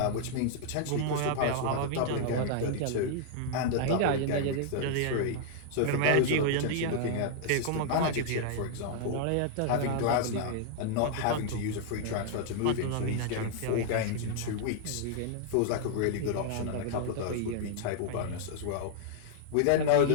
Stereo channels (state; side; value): different; both; correlation -0.01